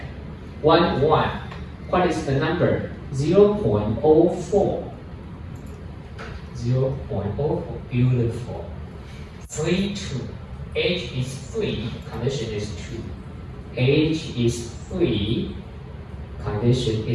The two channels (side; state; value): both; identical; correlation 1.00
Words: 1, 1. What is the number? 0.04. 0.04. Beautiful. 3, 2. Age is 3. Condition is 2. Age is 3. Condition